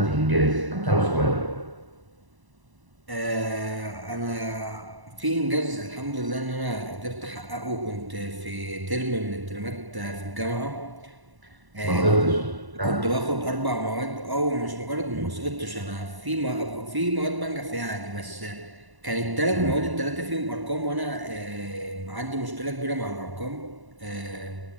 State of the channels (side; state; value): left; late; 1.0 ms